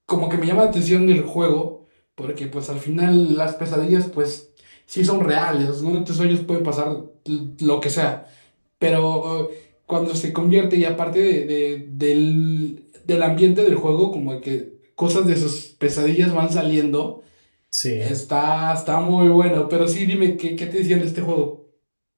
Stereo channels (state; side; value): inverted; both; correlation -1.00